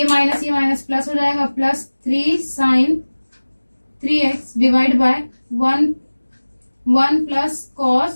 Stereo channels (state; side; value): inverted; both; correlation -1.00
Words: माइनस प्लस हो जाएगा, plus 3 sine 3x divide by 1 plus